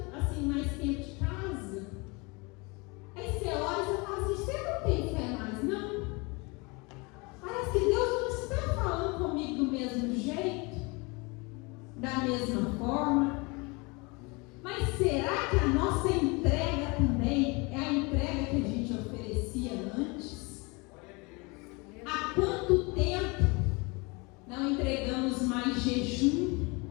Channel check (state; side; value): quieter; right; 27.6 dB